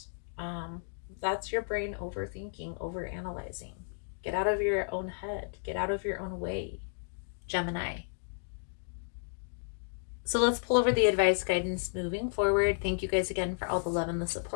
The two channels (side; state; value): right; silent; digital silence